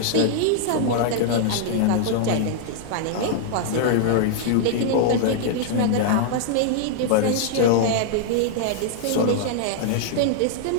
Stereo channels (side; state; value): both; different; correlation -0.01